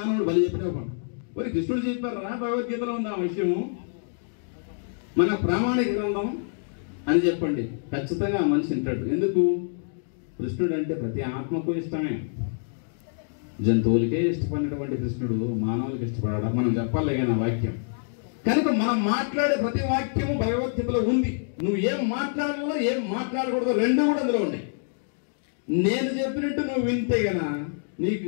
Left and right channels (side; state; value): right; silent; digital silence